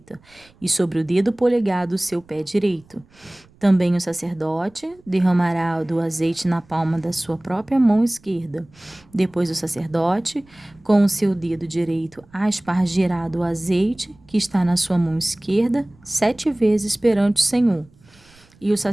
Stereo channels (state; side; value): noise; right; rumble, 29 dB below the sound